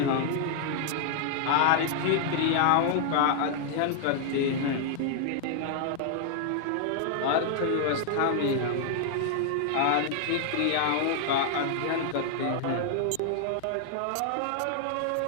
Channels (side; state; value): both; different; correlation 0.00